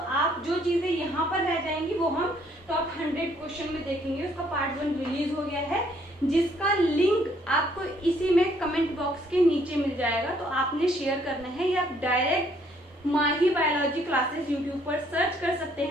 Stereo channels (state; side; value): normal; both; correlation 0.66